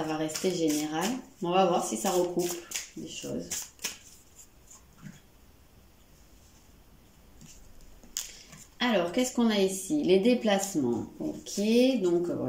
va rester général. On va voir si ça recoupe des choses. Alors, qu'est-ce qu'on a ici? Les déplacements. Ok, donc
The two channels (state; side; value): identical; both; correlation 1.00